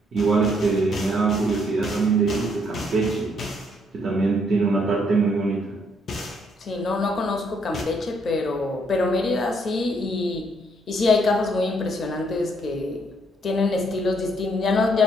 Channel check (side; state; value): both; normal; correlation 0.70